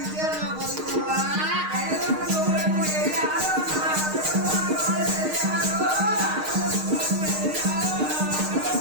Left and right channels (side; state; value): left; late; 6.5 ms